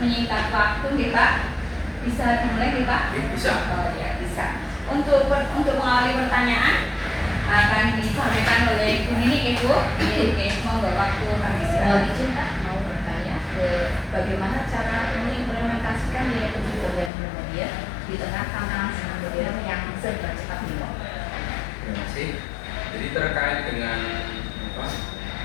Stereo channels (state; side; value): drops out; right; at 17.1 s